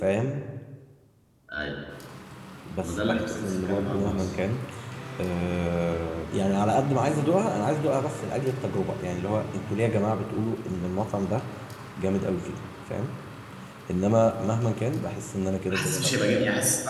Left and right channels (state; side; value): identical; both; correlation 1.00